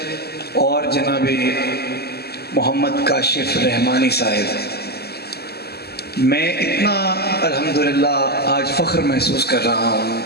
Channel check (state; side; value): late; right; 0.46 ms